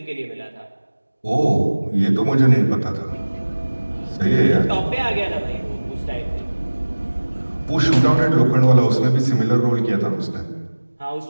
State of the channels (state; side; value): inverted; both; correlation -1.00